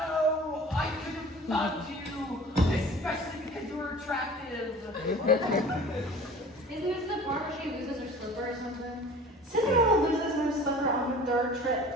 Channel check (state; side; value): normal; both; correlation 0.43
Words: I could have loved you, especially because you were attractive. Isn't this the part where she loses her slipper or something? Cinderella loses her slipper on her third